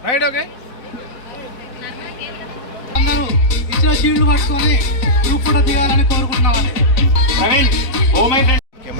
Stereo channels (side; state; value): right; late; 3.9 ms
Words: Right okay అందరూ ఇచ్చిన shield పట్టుకొని గ్రూప్ ఫోటో దిగాలని కోరుకుంటున్నాను.